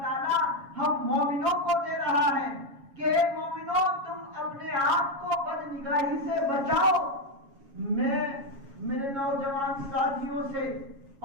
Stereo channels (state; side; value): late; left; 7.3 ms